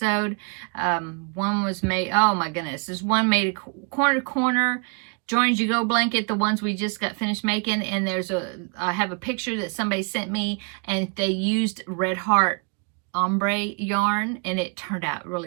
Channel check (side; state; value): left; quieter; 36.3 dB